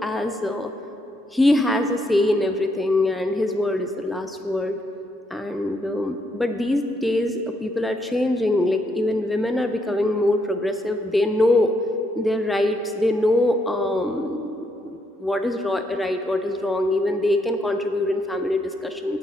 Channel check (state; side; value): normal; both; correlation 0.76